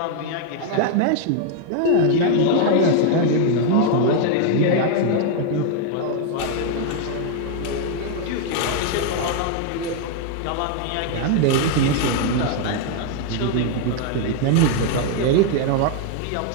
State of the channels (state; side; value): different; both; correlation 0.00